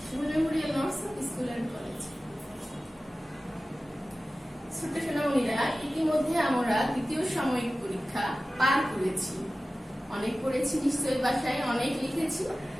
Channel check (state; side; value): normal; both; correlation 0.96